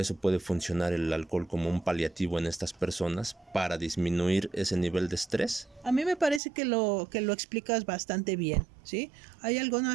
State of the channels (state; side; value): drops out; left; at 6.4 s